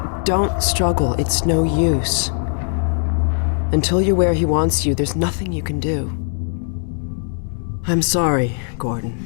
Don't struggle. It's no use. Until you're where he wants you, there's nothing you can do. I'm sorry, Gordon.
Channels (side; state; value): right; silent; 66 dB below the other